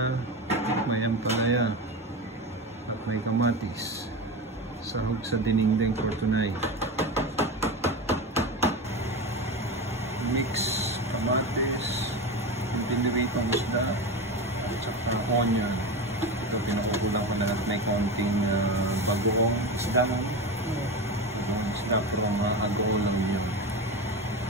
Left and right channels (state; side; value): normal; both; correlation 0.23